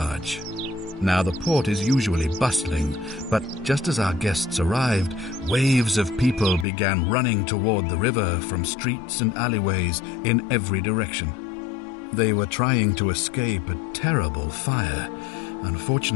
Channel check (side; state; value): right; drops out; at 6.7 s